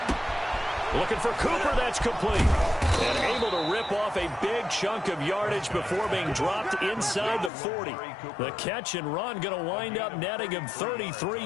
Looking for Cooper, that's complete. And able to rip off a big chunk of yardage before being dropped inside the 40. The catch and run going to wind up netting him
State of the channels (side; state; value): right; drops out; at 7.5 s